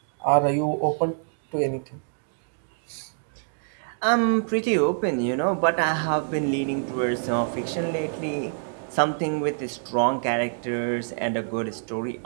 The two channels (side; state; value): left; silent; digital silence